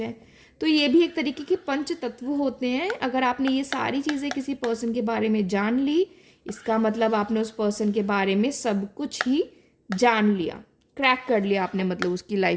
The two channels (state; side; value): identical; both; correlation 1.00